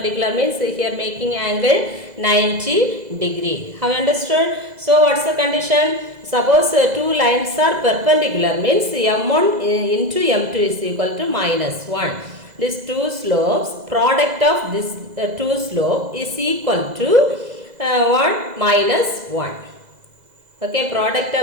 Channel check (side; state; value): left; late; 2.0 ms